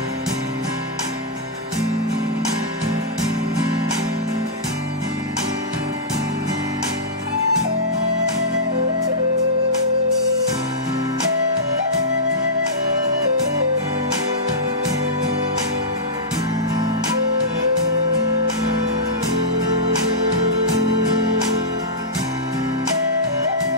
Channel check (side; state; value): both; normal; correlation -0.14